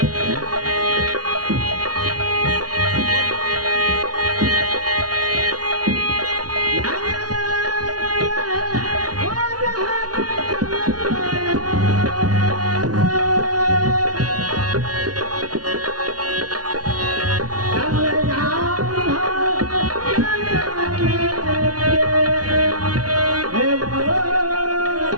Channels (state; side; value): late; left; 0.68 ms